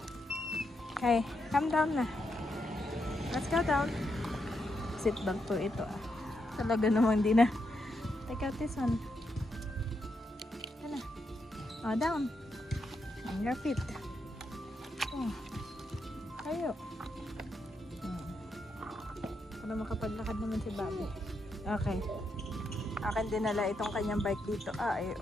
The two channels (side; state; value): both; normal; correlation 0.82